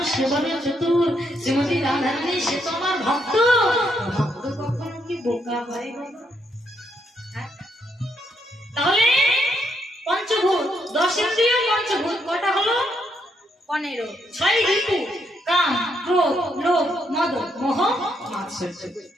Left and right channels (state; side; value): normal; both; correlation 0.76